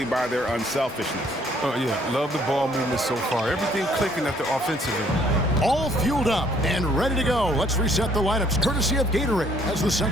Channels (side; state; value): both; normal; correlation 0.63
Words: by their unselfishness. Oh, yeah. Love the ball movement so far. Everything clicking at the offensive end. All fueled up and ready to go. Let's reset the lineups, courtesy of Gatorade, as the